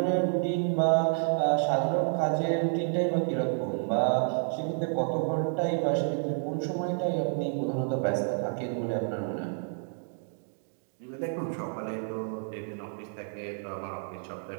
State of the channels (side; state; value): left; silent; digital silence